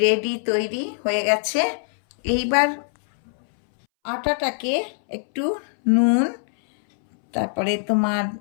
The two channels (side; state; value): right; silent; 63 dB below the other